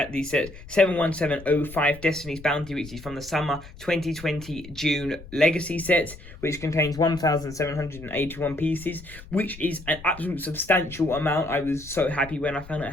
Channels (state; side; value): noise; left; rumble, 17 dB below the sound